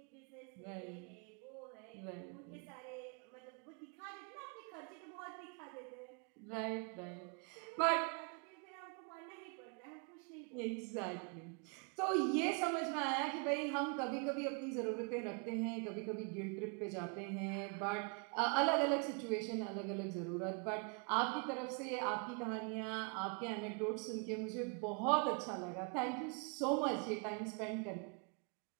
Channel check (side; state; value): left; quieter; 36.2 dB